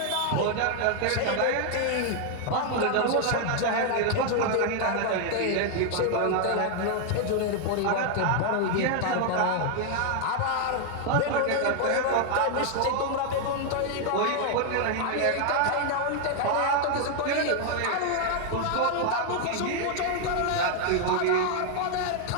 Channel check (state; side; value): different; both; correlation 0.00